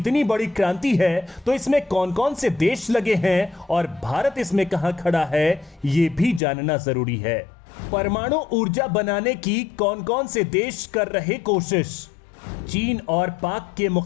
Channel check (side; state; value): right; drops out; at 6.4 s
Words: बड़ी क्रांति है, तो इसमें कौन कौन से देश लगे हैं और भारत इसमें कहां खड़ा है, ये भी जानना जरूरी है। परमाणु ऊर्जा बनाने की कौन कौन से देश कर रहे कोशिश? चीन और पाक के